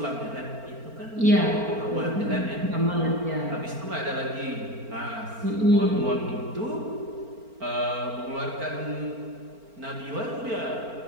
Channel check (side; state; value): left; late; 4.4 ms